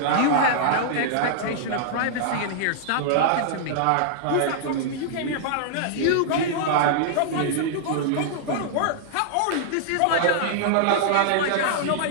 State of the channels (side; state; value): both; different; correlation -0.01